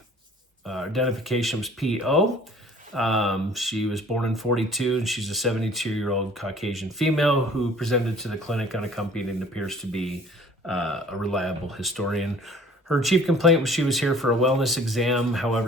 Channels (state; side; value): normal; both; correlation 0.52